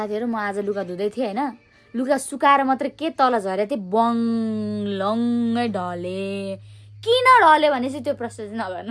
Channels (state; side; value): identical; both; correlation 1.00